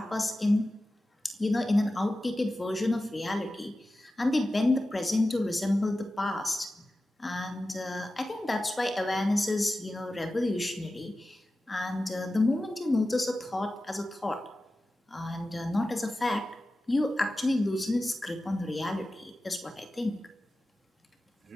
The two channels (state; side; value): normal; both; correlation 0.94